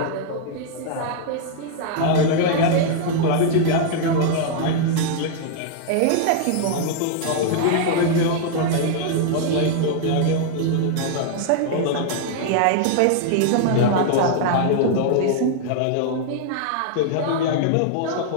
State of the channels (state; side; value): different; both; correlation 0.00